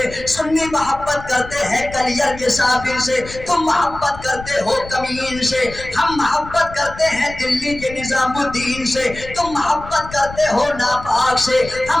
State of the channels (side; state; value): left; noise; rumble, 14 dB below the sound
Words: سنی محبت کرتے ہیں کلیئر کے صابر سے۔ تم محبت کرتے ہو کمین سے، ہم محبت کرتے ہیں دلی کے نظام الدین سے۔ تم محبت کرتے ہو ناپاک سے،